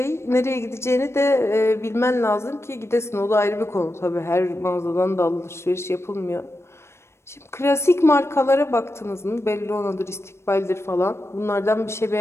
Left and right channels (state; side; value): late; right; 0.13 ms